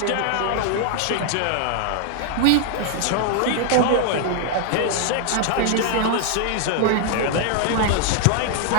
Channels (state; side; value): different; both; correlation 0.00